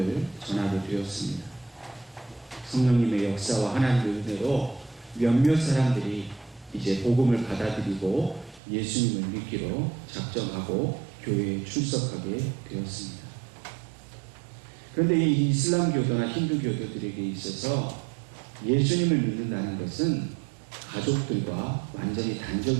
전하게 되었습니다. 성령님의 역사와 하나님의 은혜로 몇몇 사람들이 이제 복음을 받아들이고 예수님을 믿기로 작정하고 교회에 출석하게 되었습니다. 그런데 이 이슬람 교도나 힌두 교도들에게 있어서 예수님을 믿는다는 것은 가족들과 완전히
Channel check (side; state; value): left; drops out; at 8.6 s